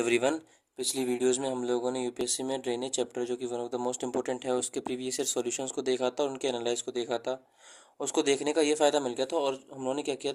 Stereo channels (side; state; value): both; identical; correlation 1.00